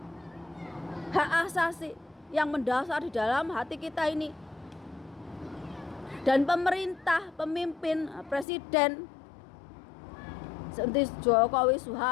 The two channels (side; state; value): right; drops out; at 8.5 s